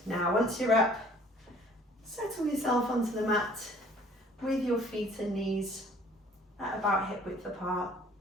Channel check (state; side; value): normal; both; correlation 0.55